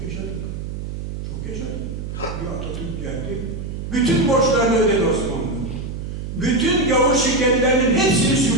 yaşadık. Çok yaşadık. Bir Atatürk geldi. Bütün borçlarını ödedi Osmanlı. Bütün gavur şirketlerinin hepsini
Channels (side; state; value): right; noise; hum, 7 dB below the sound